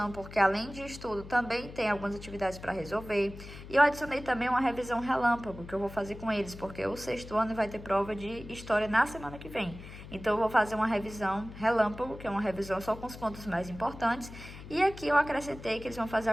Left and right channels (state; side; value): noise; left; hum, 14 dB below the sound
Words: porque além de estudo, também tem algumas atividades para resolver. E eu adicionei também uma revisão relâmpago, que eu vou fazer com eles, porque o 6º ano vai ter prova de história na semana que vem. Então, eu vou fazer uma revisão relâmpago, que é uma revisão só com os pontos mais importantes. E aqui eu acrescentei que eles vão fazer